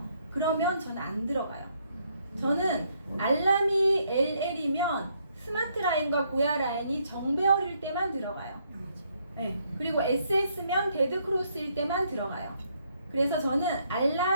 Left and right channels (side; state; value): both; inverted; correlation -0.72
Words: 그러면 저는 안 들어가요. 저는 알람이 LL이면 스마트 라인과 고야 라인이 정배열일 때만 들어가요. 네. 그리고 SS면 데드 크로스일 때만 들어가요. 그래서 저는